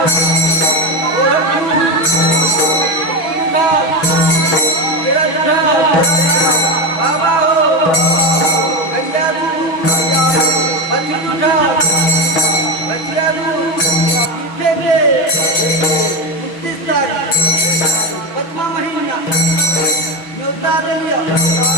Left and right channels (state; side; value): late; right; 6.1 ms